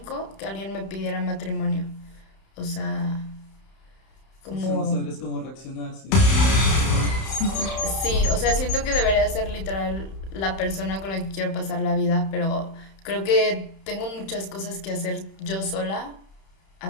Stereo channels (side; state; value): right; late; 31 ms